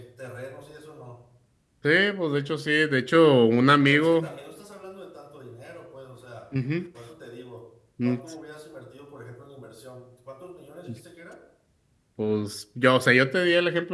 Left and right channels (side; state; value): both; identical; correlation 1.00